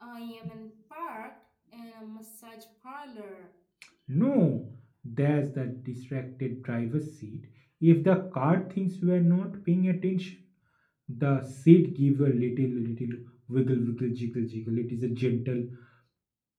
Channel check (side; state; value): both; identical; correlation 1.00